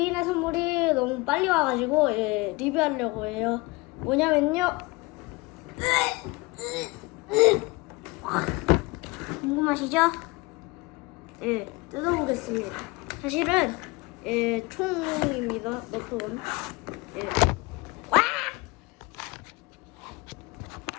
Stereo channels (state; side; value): quieter; right; 24.1 dB